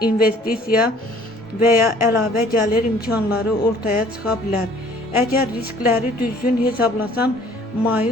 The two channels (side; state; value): both; normal; correlation 0.55